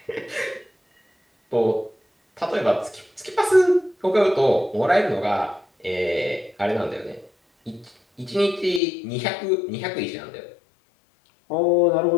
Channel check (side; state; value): right; drops out; at 8.8 s